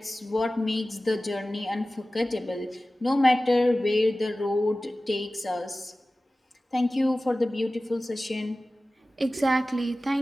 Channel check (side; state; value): both; normal; correlation 0.96